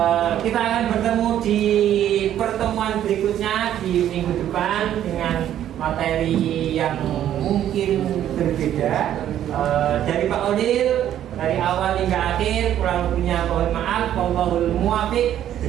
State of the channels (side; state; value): left; quieter; 11.2 dB